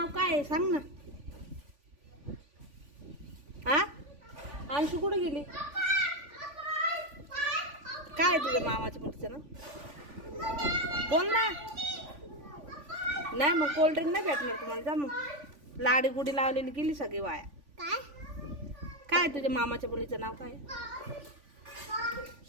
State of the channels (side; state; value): left; late; 3.5 ms